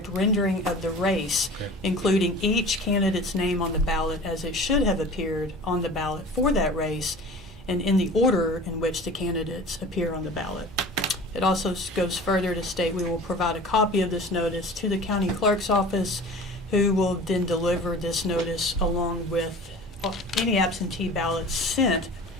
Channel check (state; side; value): normal; both; correlation 0.40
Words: rendering of the race, including each candidate's name on the ballot as it should have appeared on the ballot for that race and in the order in which the candidates appear on the ballot. It also goes further to state we will provide a copy of this notice to the county clerk's office, who will then deliver this notice along with any absentee ballots sent